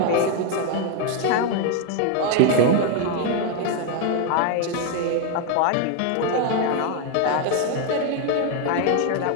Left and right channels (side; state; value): both; different; correlation 0.01